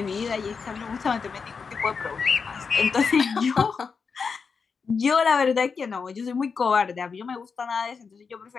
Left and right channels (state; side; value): quieter; right; 5.4 dB